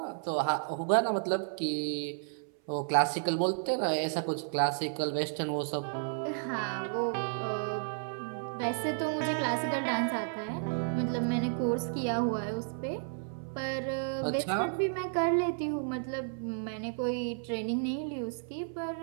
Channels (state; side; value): silent; left; 56 dB below the other